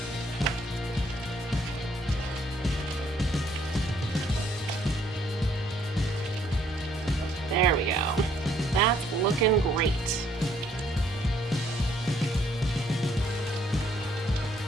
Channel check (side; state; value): both; normal; correlation 0.66